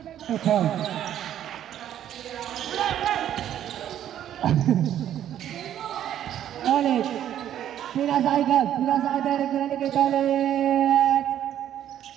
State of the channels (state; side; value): quieter; left; 10.9 dB